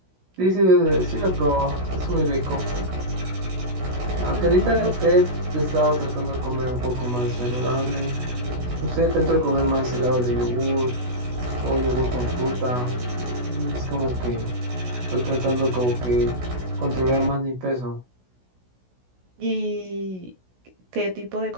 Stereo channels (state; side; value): late; left; 16 ms